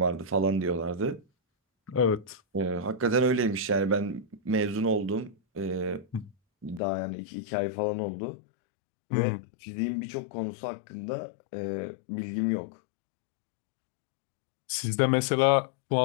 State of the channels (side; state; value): right; drops out; at 6.8 s